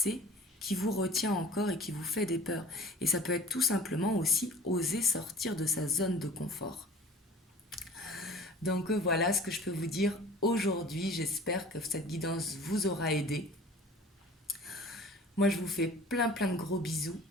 qui vous retient encore et qui vous fait des peurs. Et ça peut être tout simplement aussi oser sortir de sa zone de confort. Donc voilà ce que je peux vous dire aujourd'hui. J'espère que cette guidance vous aura aidé. Moi je vous fais plein de gros bisous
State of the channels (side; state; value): both; normal; correlation 0.45